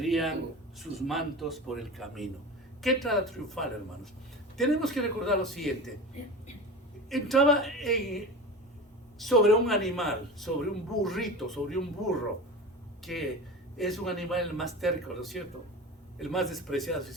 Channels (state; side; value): normal; both; correlation 0.31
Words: sus mantos por el camino. Qué entrada triunfal, hermanos. Tenemos que recordar lo siguiente. Entraba sobre un animal, sobre un burrito, sobre un burro, que es un animal más terco, ¿no es cierto? El más despreciado, si